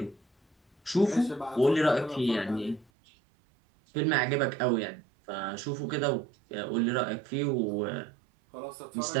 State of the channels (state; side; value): drops out; left; at 2.9 s